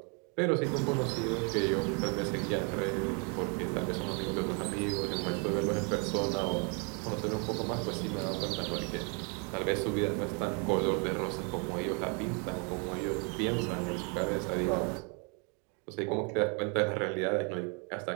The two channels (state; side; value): quieter; left; 35.9 dB